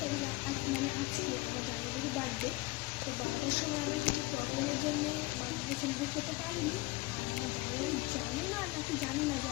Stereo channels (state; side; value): quieter; right; 21.3 dB